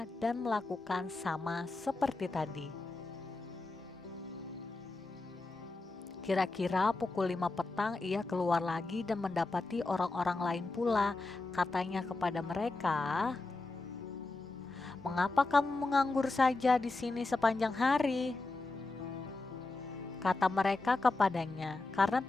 dan melakukan sama seperti tadi. Kira-kira pukul 5 petang ia keluar lagi dan mendapati orang-orang lain pula. Katanya kepada mereka, "Mengapa kamu menganggur saja di sini sepanjang hari?" Kata mereka kepadanya, "Karena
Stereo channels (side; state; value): right; quieter; 3.3 dB